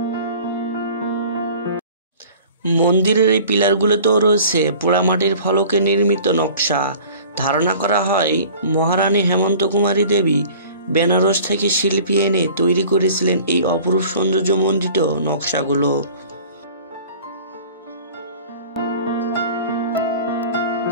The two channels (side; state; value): both; inverted; correlation -0.45